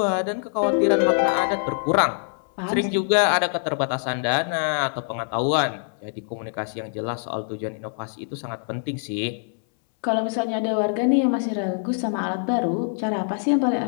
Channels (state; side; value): silent; right; 63 dB below the other